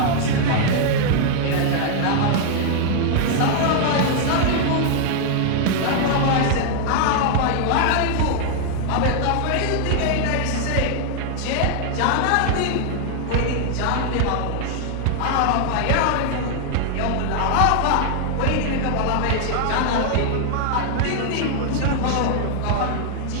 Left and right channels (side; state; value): both; different; correlation 0.00